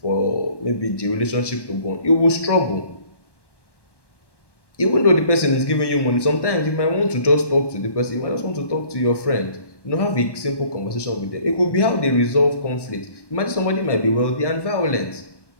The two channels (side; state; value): right; late; 1.1 ms